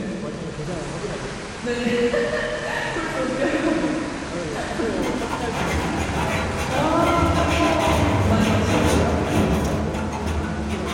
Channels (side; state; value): both; identical; correlation 1.00